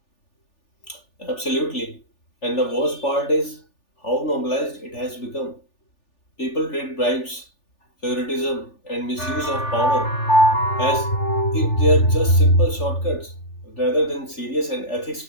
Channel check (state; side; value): late; right; 3.4 ms